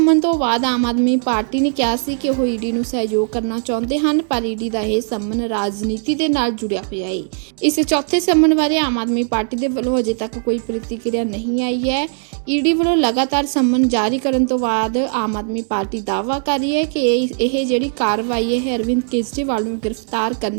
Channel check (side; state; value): left; silent; 67 dB below the other